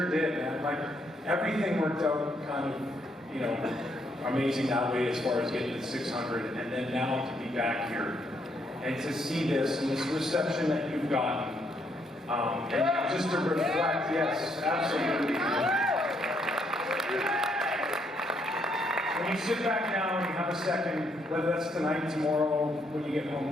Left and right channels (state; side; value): normal; both; correlation 0.73